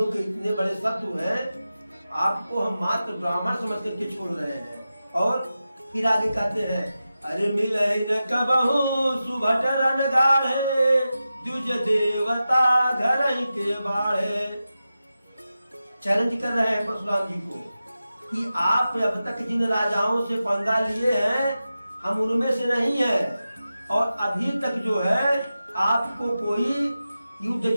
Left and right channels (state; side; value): inverted; both; correlation -0.92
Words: के इतने बड़े शत्रु हैं, आपको हम मात्र ब्राह्मण समझ करके छोड़ रहे हैं। और फिर आगे कहते हैं अरे मिले न कबहू सुभट रन गाढ़े द्विज देवता घर ही के बाढ़े। चैलेंज कर रहे हैं परशुराम जी को कि आप अब तक जिन राजाओं से पंगा लिए हैं हम उनमें से नहीं है, और अभी तक जो है आपको कोई युद्ध